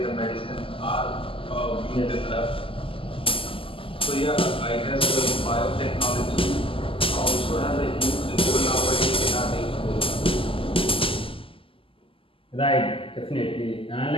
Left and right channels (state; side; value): late; right; 0.26 ms